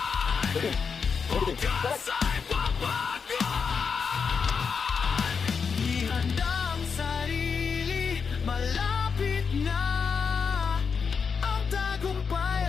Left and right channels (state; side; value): quieter; right; 5.8 dB